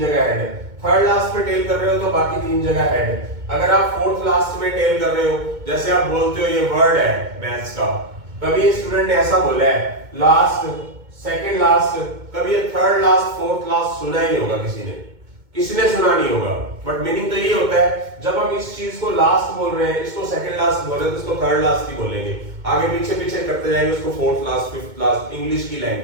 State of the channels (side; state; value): left; late; 2.2 ms